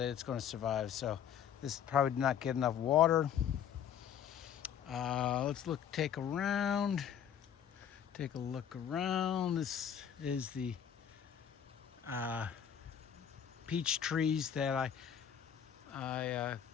it's going to survive. So this probably did not get enough water. Let's take a look around. This is the peach trees that I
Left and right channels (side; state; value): right; quieter; 8.8 dB